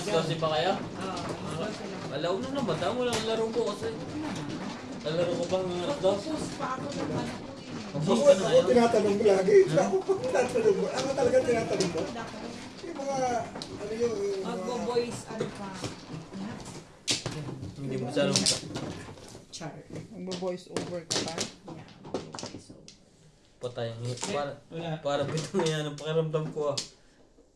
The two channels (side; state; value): both; identical; correlation 1.00